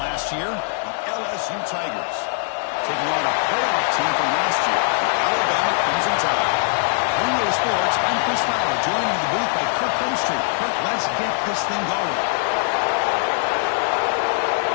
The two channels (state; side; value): silent; right; 65 dB below the other